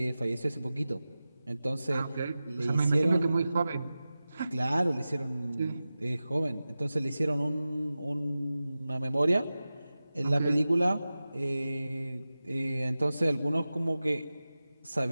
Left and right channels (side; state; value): both; inverted; correlation -0.95